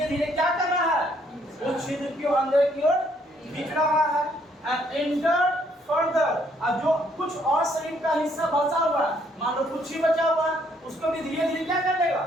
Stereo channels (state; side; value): normal; both; correlation 0.68